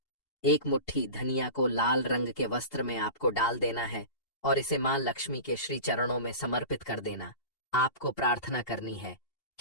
1 मुट्ठी धनिया को लाल रंग के वस्त्र में आपको डाल देना है और इसे मां लक्ष्मी के श्री चरणों में समर्पित कर देना। आपको प्रार्थना करनी है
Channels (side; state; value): right; late; 2.7 ms